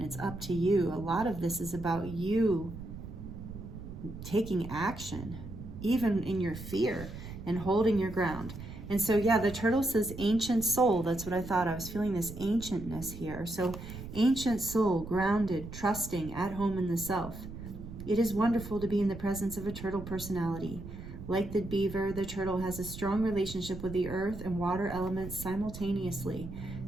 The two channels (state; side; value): noise; right; rumble, 11 dB below the sound